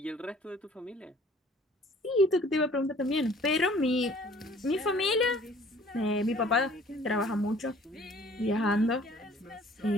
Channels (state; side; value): normal; both; correlation 0.54